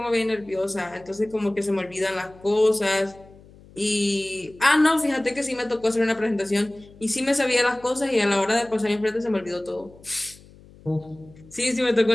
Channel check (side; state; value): left; noise; hum, 24 dB below the sound